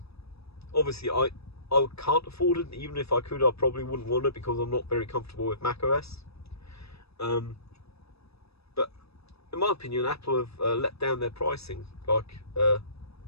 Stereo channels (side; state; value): right; late; 0.78 ms